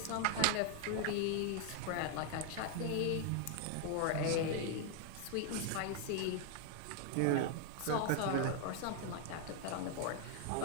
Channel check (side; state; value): both; different; correlation 0.00